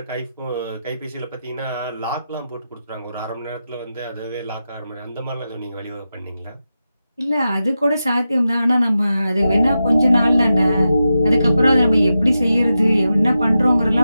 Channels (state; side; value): inverted; both; correlation -0.90